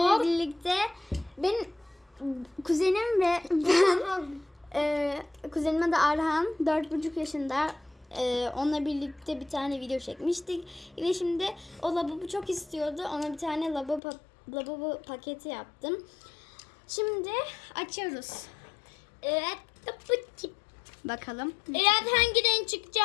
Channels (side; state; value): right; drops out; at 14.0 s